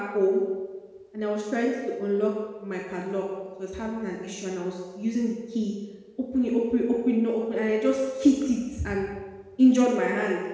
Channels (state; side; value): identical; both; correlation 1.00